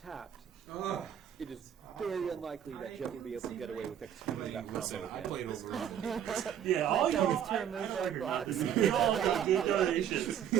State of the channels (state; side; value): quieter; left; 9.4 dB